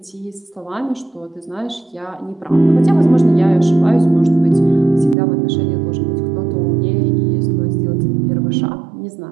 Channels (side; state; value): left; drops out; at 5.2 s